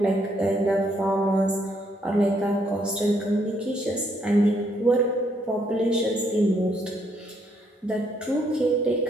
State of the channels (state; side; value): normal; both; correlation 0.71